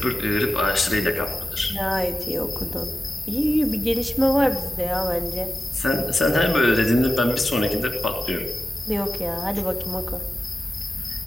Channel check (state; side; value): normal; both; correlation 0.94